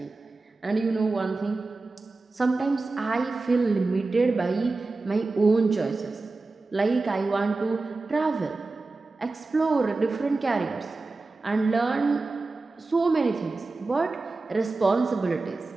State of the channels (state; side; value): quieter; left; 3.5 dB